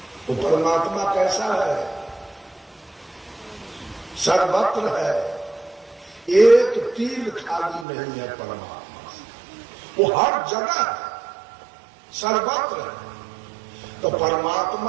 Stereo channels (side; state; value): left; drops out; at 7.9 s